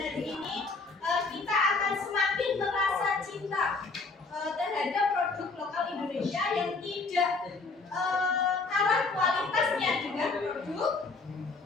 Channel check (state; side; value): quieter; right; 3.9 dB